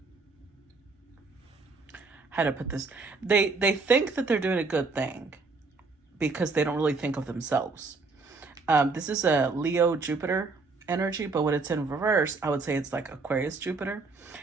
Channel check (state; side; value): quieter; left; 4.0 dB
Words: how to put this, they think that they're doing a good thing because they don't really think of themselves. This is a Leo Jupiter energy, but when it's in reverse, I would say it's like Aquarius Jupiter,